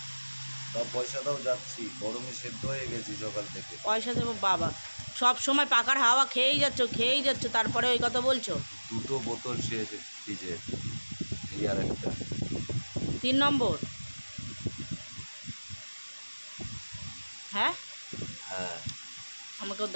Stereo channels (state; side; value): inverted; both; correlation -1.00